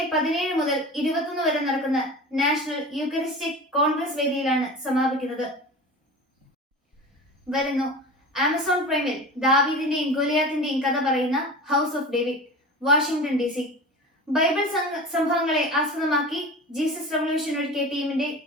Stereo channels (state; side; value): normal; both; correlation 0.33